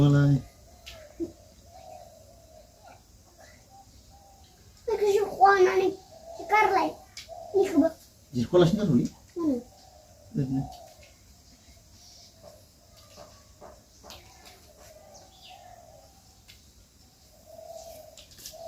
lah. Di sekolah sini dulu.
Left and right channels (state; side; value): identical; both; correlation 1.00